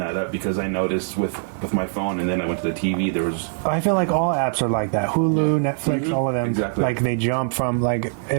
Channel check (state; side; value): silent; left; 64 dB below the other